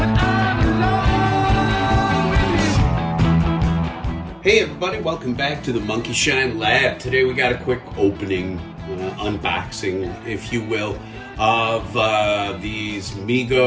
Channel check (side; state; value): both; identical; correlation 1.00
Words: Hey everybody, welcome back to the Monkey Shine Lab. Today we got a quick opening, unboxing, if you will, of these